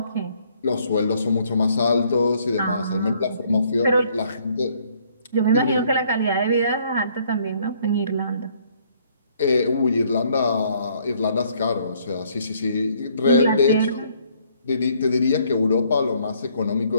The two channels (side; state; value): both; inverted; correlation -0.65